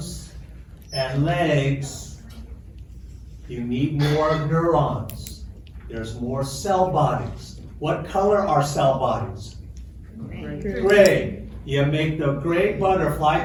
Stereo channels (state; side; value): identical; both; correlation 1.00